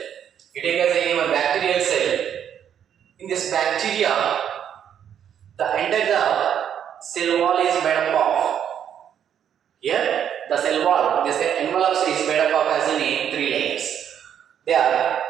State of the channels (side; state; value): left; quieter; 9.1 dB